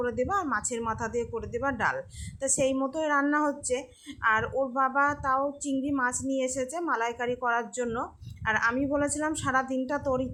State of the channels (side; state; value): both; identical; correlation 1.00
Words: দেবা আর মাছের মাথা দিয়ে করে দেবা ডাল। তা সেই মতোই রান্না হচ্ছে। আর ওর বাবা তাও চিংড়ি মাছ নিয়ে এসেছে মালাইকারি করার জন্য। আর আমি বলেছিলাম সারা দিনটা তোর